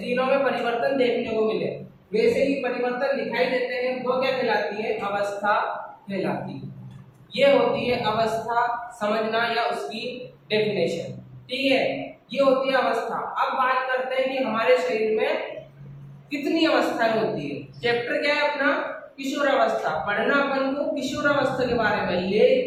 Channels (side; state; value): both; identical; correlation 1.00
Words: तीनों में परिवर्तन देखने को मिले, वैसे ही परिवर्तन दिखाई देते हैं, वो क्या कहलाती है? अवस्था कहलाती है। ये होती है अवस्था समझना या उसकी डेफिनेशन। ठीक है, ये होती है अवस्था। अब बात करते हैं कि हमारे शरीर में कितनी अवस्थाएं होती है। चैप्टर क्या है अपना? किशोरावस्था। पढ़ना अपन को किशोरावस्था के बारे में,